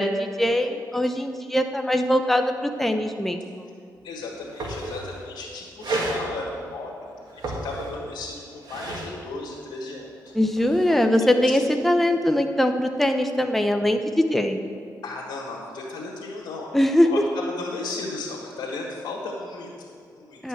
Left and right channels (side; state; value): both; normal; correlation 0.88